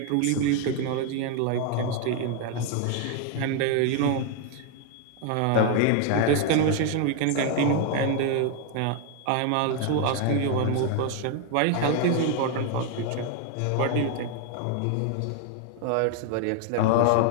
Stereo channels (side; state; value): both; different; correlation 0.01